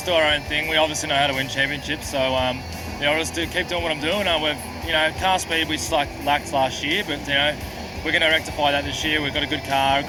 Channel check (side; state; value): both; identical; correlation 1.00